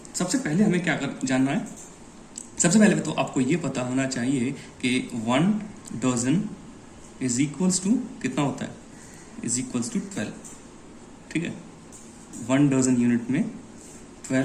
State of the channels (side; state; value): both; identical; correlation 1.00